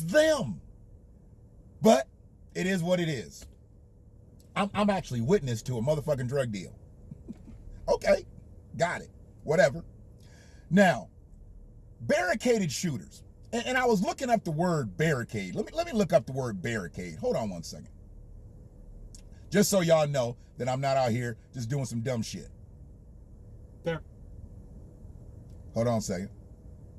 But it is what it is. I'm actually witness to a motherfucking drug deal. Okay. Got it. Whatever. Now, barricaded shooters. And I was looking up the word barricade. Let me look up the word barricade. Hold on one second. Just so y'all know that I'm not out here just doing some dumb shit. Bar- Hold on a second.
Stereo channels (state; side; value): identical; both; correlation 1.00